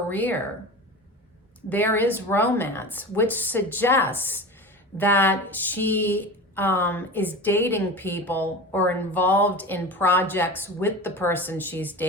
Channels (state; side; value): normal; both; correlation 0.31